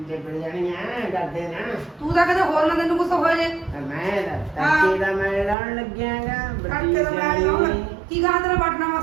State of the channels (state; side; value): drops out; left; at 5.6 s